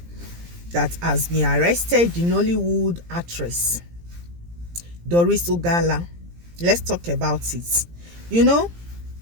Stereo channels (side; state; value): left; late; 17 ms